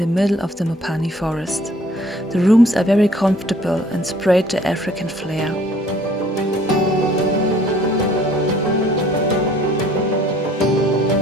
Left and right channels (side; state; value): both; normal; correlation 0.56